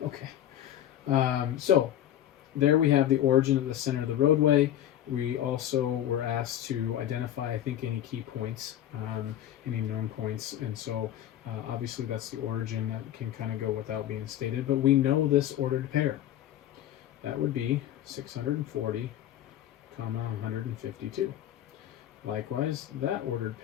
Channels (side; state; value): right; quieter; 11.7 dB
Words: Okay, so there we have the origin of the center of the roadway. We also were asked to identify, I think, any key points, any known points, and so obviously that's the origin. That can kind of go without being stated, but we know this ordered pair. That would be 640, 152. Likewise, that ordered